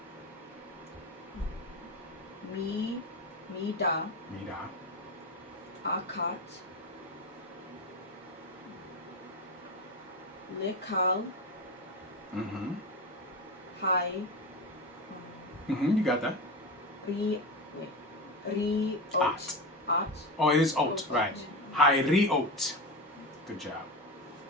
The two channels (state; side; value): normal; both; correlation 0.22